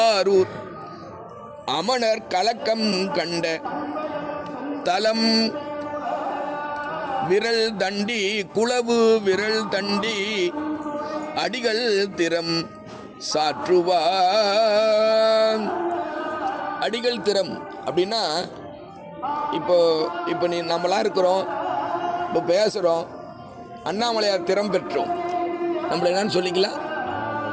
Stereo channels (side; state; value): both; identical; correlation 1.00